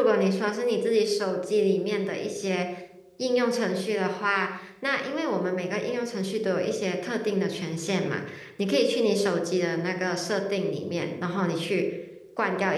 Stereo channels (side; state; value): both; identical; correlation 1.00